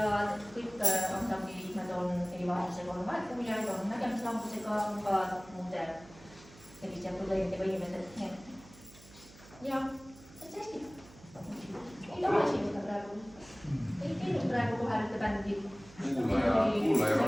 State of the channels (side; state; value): right; noise; hum, 21 dB below the sound